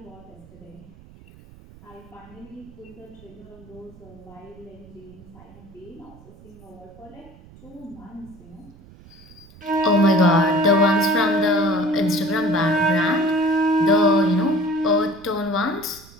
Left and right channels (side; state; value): right; noise; rumble, 22 dB below the sound